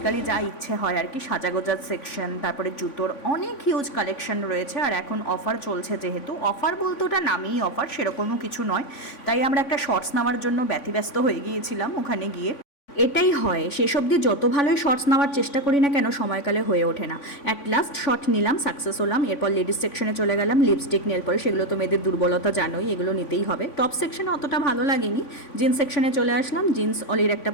যা ইচ্ছে হয় আর কি, সাজাগোজার সেকশন, তারপরে জুতোর অনেক হিউজ কালেকশন রয়েছে। আর এখন অফার চলছে, যেহেতু অফার বলতে ওটা নামেই অফার, সেরকমও কিছু নয়। তাই আমরা একটা শর্টস নেওয়ার জন্য ব্যতিব্যস্ত হয়ে গিয়েছিলাম ওখানে গিয়ে। এটাই হয়, সেসব দিয়ে যত ভালোই শর্টস নেওয়ার চেষ্টা করি না কেন, সময়কালে হয়ে ওঠে না। অ্যাট লাস্ট শর্ট নিলাম, সাকসেস হলাম। এরপর লেডিস সেকশনে চলে গেলাম। লিপস্টিক, নেল পরে, সেগুলো তো মেয়েদের দুর্বলতা জানোই, এগুলো নিতেই হবে। টপ সেকশনে অতটা ভালো লাগেনি, জিন্স সেকশনে চলে আসলাম। জিন্স অলির একটা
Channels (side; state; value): right; late; 3.5 ms